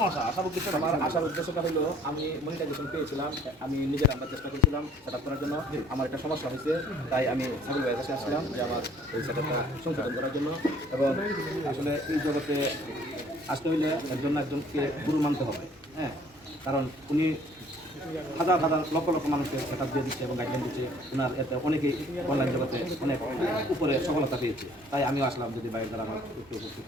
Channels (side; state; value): both; normal; correlation 0.56